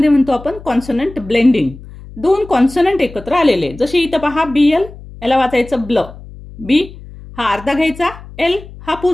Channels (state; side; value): noise; left; hum, 17 dB below the sound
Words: म्हणतो आपण कॉन्सोनंट ब्लेंडिंग। दोन कॉन्सोनंट एकत्र आलेले, जसे इथं पहा BL, याला वाचायचं ब्ल, बी हा अर्धा घ्यायचा, एल हा